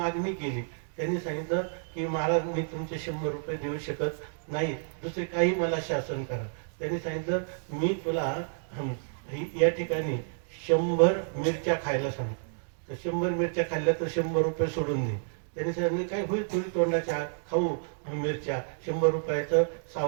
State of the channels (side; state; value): left; silent; digital silence